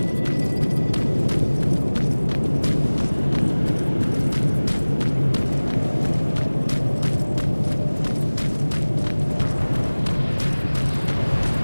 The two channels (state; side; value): inverted; both; correlation -1.00